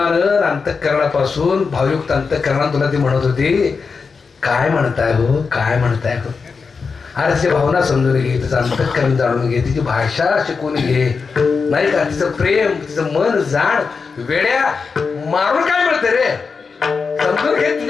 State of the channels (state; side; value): quieter; right; 5.1 dB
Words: अंतःकरणापासून भावयुक्त अंतःकरणात तुला ती म्हणत होती काय म्हणताय हो काय म्हणताय हो अरे तिची भावना समजून घे तिचं अंतःकरण जाणून घे तिची भाषा शिकून घे नाही का तिचं प्रेम तिचं मन जाण वेड्या मारून काय मिळतं रे समजून घे